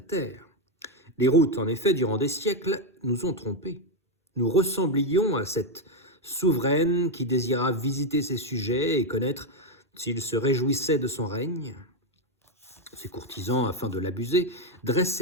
Terre. Les routes, en effet, durant des siècles, nous ont trompés. Nous ressemblions à cette souveraine qui désira visiter ses sujets et connaître s'ils se réjouissaient de son règne. Ses courtisans, afin de l'abuser,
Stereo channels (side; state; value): both; normal; correlation 0.05